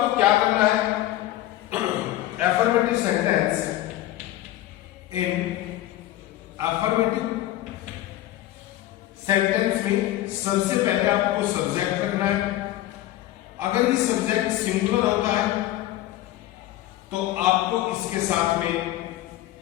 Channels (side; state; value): right; quieter; 14.8 dB